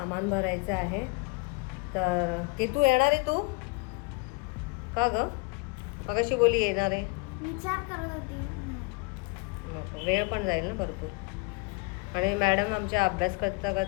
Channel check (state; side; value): quieter; right; 30.0 dB